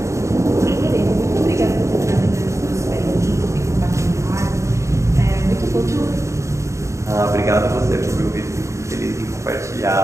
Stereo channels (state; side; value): late; left; 0.14 ms